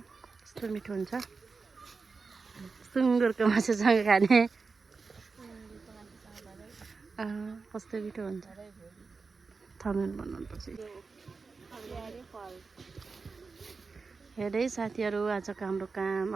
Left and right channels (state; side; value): quieter; left; 4.5 dB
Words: कस्तो मिठो हुन्छ सुँगुरको मासुसँग खाने कस्तो मिठो हुन्छ थमेल बनाउनुपर्छ हेर्दै साथीहरू आजको हाम्रो काम